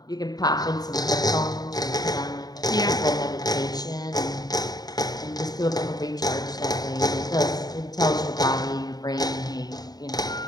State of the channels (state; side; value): late; right; 0.19 ms